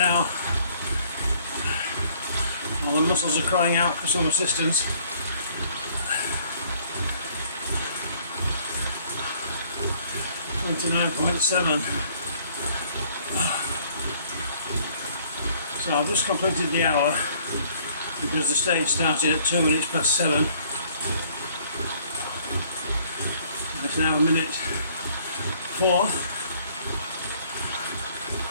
While the muscles are crying out for some assistance. .7. So I've just completed the hour because the stage started at 2 minutes past 7. It's now 1:04.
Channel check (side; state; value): both; inverted; correlation -0.60